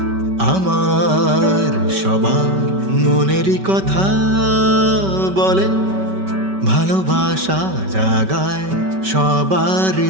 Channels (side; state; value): left; late; 5.2 ms